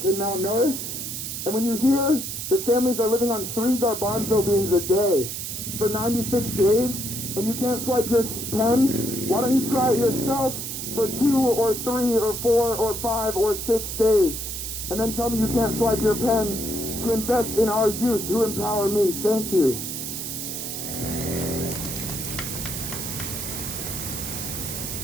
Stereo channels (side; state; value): right; noise; hiss, 5 dB below the sound